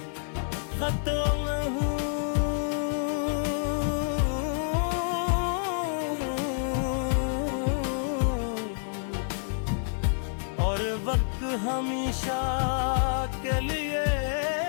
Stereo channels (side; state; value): right; silent; 59 dB below the other